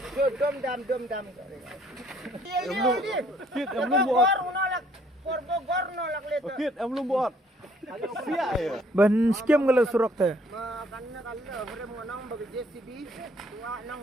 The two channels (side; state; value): both; normal; correlation 0.63